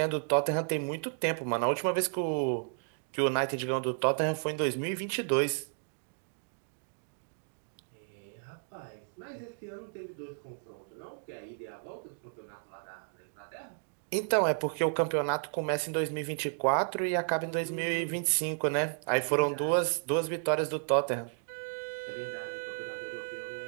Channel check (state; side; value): silent; left; 56 dB below the other